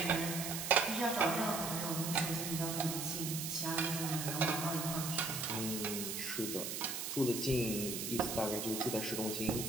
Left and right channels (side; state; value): right; noise; hiss, 4 dB below the sound